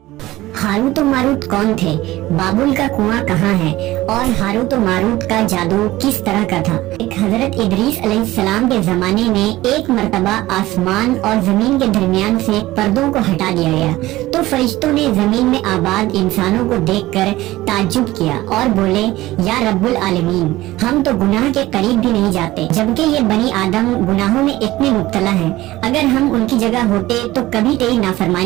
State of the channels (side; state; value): left; quieter; 17.2 dB